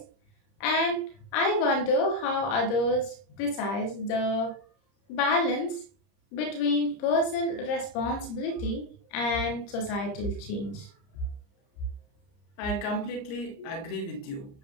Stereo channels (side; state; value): right; late; 30 ms